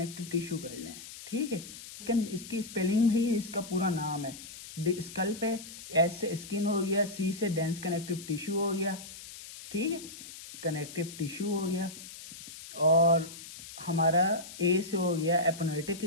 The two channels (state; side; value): noise; left; hiss, 14 dB below the sound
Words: टिश्यू कर लें। ठीक है। इसकी स्पेलिंग भी इसका पूरा नाम है। स्कल पे एस से स्किन हो गया, सी से डेंस कनेक्टिव टिश्यू हो गया। ठीक है, कनेक्टिव टिश्यू हो गया, और हमारा ए से हो गया एपोनेटिक